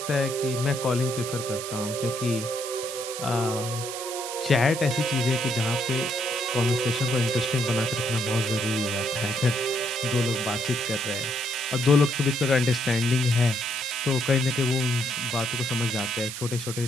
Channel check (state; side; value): noise; right; hiss, 8 dB below the sound